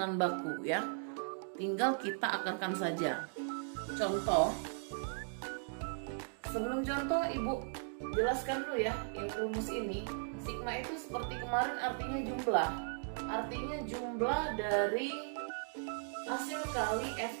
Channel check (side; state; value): left; silent; digital silence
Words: baku ya. Tinggal kita akarkan saja. Contoh. Sebelum contoh Ibu jelaskan dulu ya yang rumus ini. Sigma itu seperti kemarin artinya jumlah. Artinya jumlah dari hasil kali